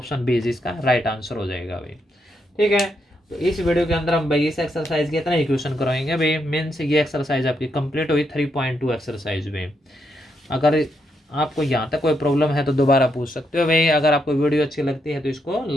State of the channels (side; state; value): both; normal; correlation 0.80